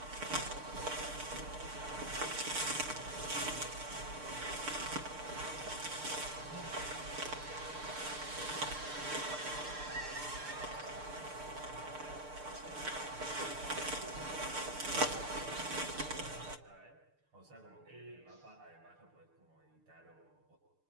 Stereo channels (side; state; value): left; late; 6.7 ms